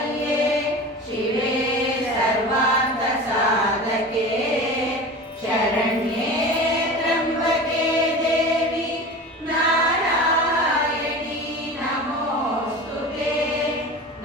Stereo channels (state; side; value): normal; both; correlation 0.33